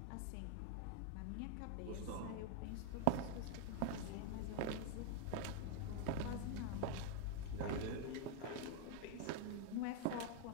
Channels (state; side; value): different; both; correlation 0.00